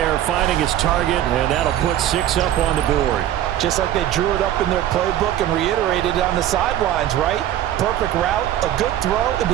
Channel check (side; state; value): left; quieter; 12.1 dB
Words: finding his target, and that'll put 6 up on the board. Just like they drew it up in their playbook and reiterated it on the sidelines, right? Perfect route, a good throw, and